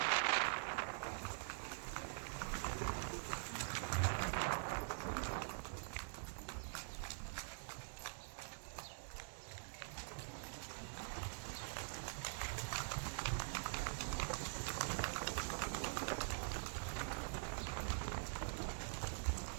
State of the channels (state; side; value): silent; left; digital silence